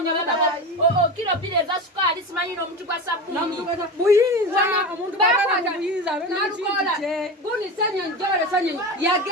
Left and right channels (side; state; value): both; normal; correlation 0.24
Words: kilo bile za sukali simanyi n'omuntu gwa sabuni buyinza omuntu bakwata buyinza Nalukoola guni senyo njole senyo